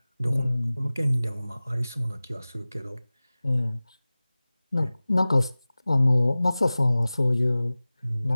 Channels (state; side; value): inverted; both; correlation -0.98